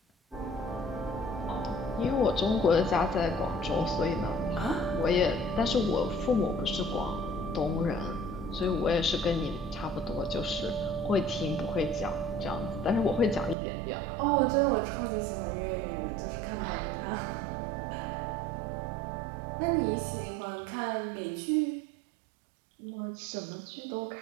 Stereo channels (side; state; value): left; drops out; at 13.6 s